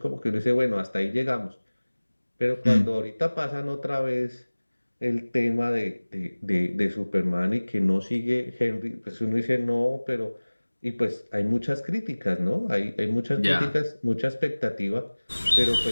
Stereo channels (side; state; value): both; inverted; correlation -1.00